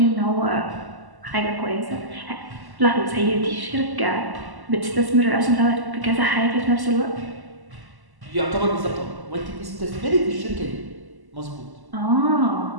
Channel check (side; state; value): left; late; 1.1 ms